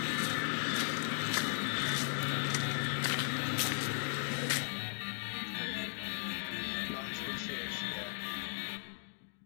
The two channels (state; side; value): silent; right; digital silence